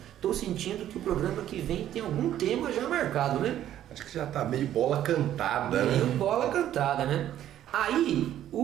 Estou sentindo que o programa que vem tem algum tema já marcado, né? Acho que já tá meio bola cantada, Meio né? bola cantada, né? Aí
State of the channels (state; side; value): quieter; left; 11.8 dB